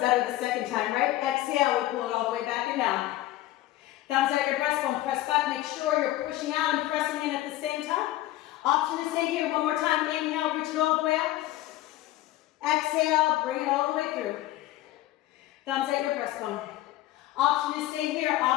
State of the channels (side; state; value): right; quieter; 15.6 dB